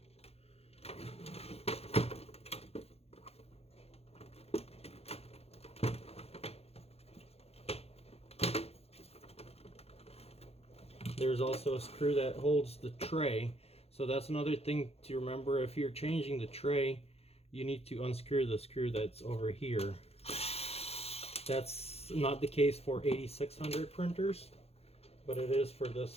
There's also a screw that holds the tray. So that's another thing to remember. If you're changing the tray, you need to unscrew the screw that's over here. That's not the case for 8600 printers, but it is for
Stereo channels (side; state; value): right; late; 0.29 ms